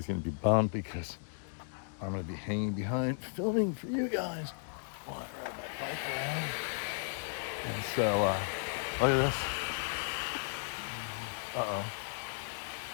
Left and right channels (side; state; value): right; silent; digital silence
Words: gonna be bummed because I'm gonna be hanging behind filming for you guys. And so, look at this. Uh-oh.